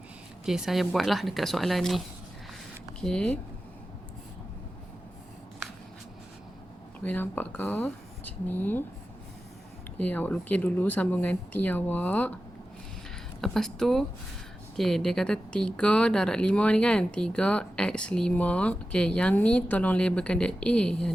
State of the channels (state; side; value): normal; both; correlation 0.93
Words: okey, saya buatlah dekat soalan ni. Okey. Boleh nampak ke? Macam ni. Okey, awak lukis dulu sambungan T awak. Lepas tu, okey, dia kata 3 darab 5 ni kan. 3x5. Okey, yang ni tolong labelkan dia A. Yang